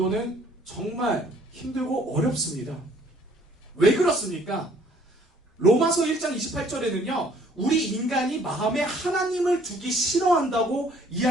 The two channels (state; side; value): normal; both; correlation 0.60